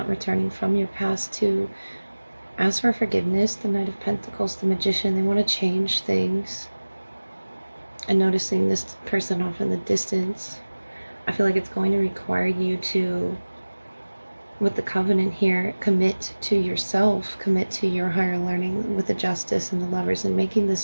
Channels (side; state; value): both; inverted; correlation -1.00